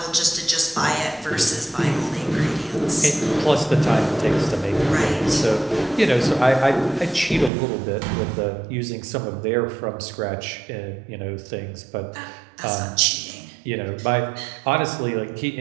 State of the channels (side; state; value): left; drops out; at 7.5 s